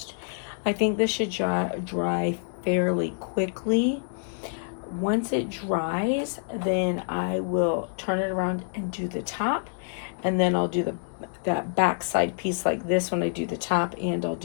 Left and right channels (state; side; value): silent; right; digital silence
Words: I think this should dry fairly quickly. Once it dries, then I will turn it around and do the top, and then I'll do that back side piece like this when I do the top, and I'll